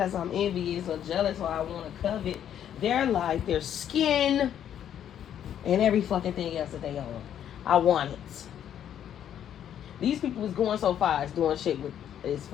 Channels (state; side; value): quieter; right; 9.9 dB